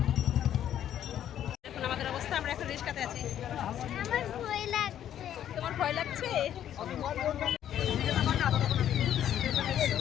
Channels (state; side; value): quieter; right; 10.7 dB